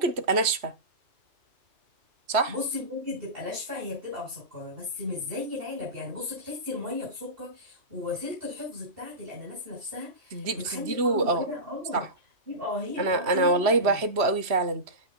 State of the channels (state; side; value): late; left; 3.1 ms